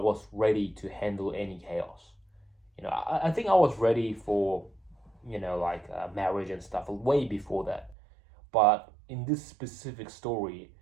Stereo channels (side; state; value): left; drops out; at 8.0 s